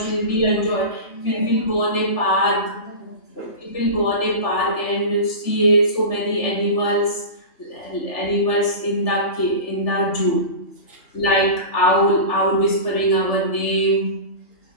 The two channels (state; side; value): late; right; 3.4 ms